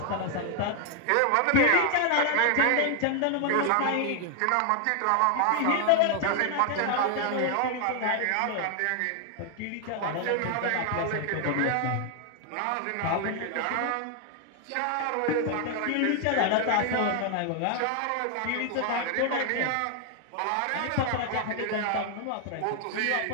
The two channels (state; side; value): different; both; correlation 0.00